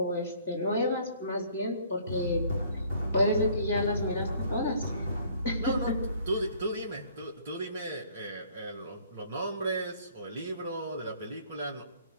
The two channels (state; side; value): inverted; both; correlation -0.58